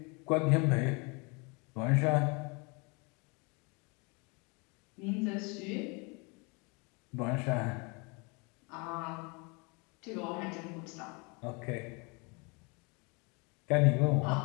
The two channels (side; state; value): right; quieter; 30.5 dB